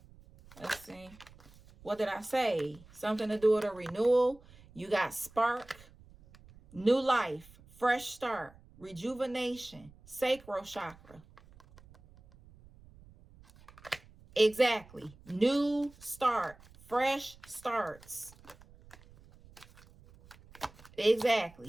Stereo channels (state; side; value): noise; right; rumble, 24 dB below the sound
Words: Let's see. What did I say? Something to do with a renewal. You got spark, new life, fresh start, rejuvenation, sacral chakra. Exactly. New start, fresh starts.